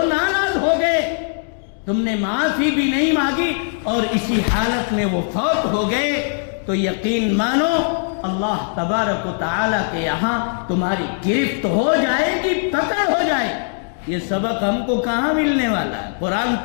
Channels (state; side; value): silent; right; digital silence